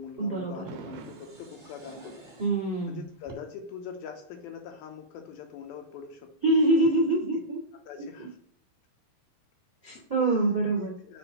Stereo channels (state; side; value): normal; both; correlation -0.15